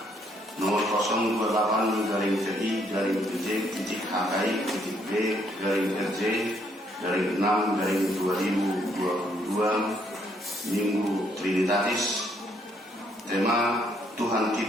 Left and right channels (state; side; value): normal; both; correlation 0.70